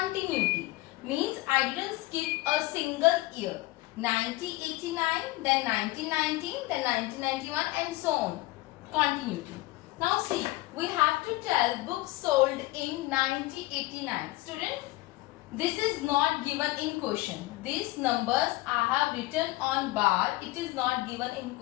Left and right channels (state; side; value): quieter; right; 19.7 dB